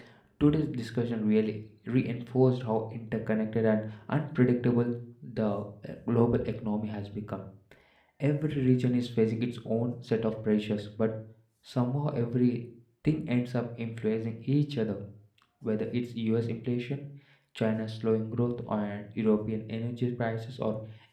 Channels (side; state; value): both; identical; correlation 1.00